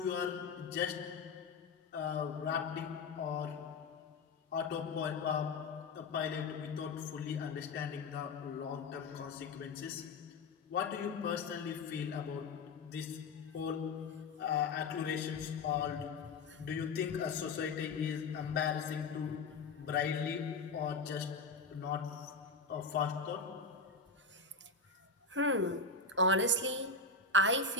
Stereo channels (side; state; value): right; quieter; 4.1 dB